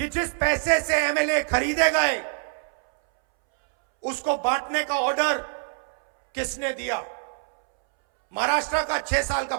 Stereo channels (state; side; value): silent; left; 62 dB below the other